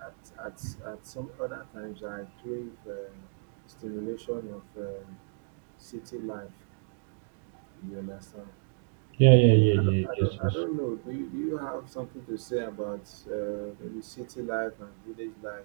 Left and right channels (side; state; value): left; silent; digital silence